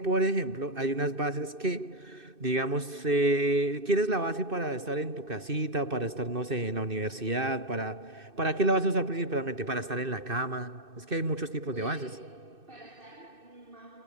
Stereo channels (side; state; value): left; late; 2.6 ms